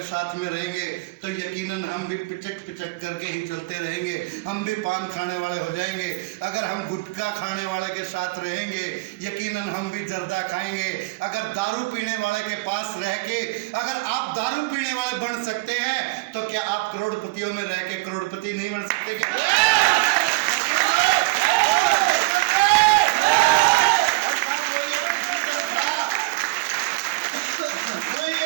साथ में रहेंगे तो यकीनन हम भी पिचक पिचक करके ही चलते रहेंगे, हम भी पान खाने वाले हो जाएंगे। अगर हम गुटखा खाने वाले के साथ रहेंगे यकीनन हम भी जर्दा खाएंगे। अगर दारू पीने वाले के पास रह के अगर आप दारू पीने वाले बन सकते हैं तो क्या आप करोड़पतियों में रह के करोड़पति नहीं बन सकते क्या?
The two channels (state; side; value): quieter; left; 23.2 dB